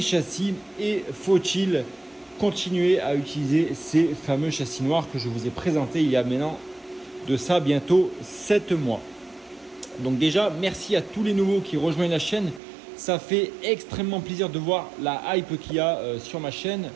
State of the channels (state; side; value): drops out; left; at 12.6 s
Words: châssis et faut-il continuer à utiliser ces fameux châssis noirs que je vous ai présentés il y a maintenant de ça bientôt 7 mois. Donc déjà, merci à tous les nouveaux qui rejoignent la chaîne. Ça fait extrêmement plaisir de voir la hype qu'il y a sur ma chaîne,